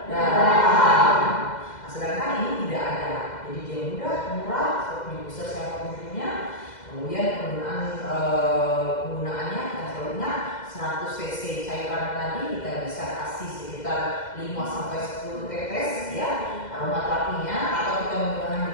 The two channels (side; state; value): right; late; 2.0 ms